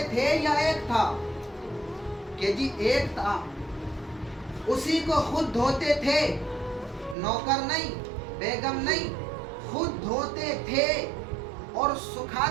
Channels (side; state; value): left; drops out; at 7.2 s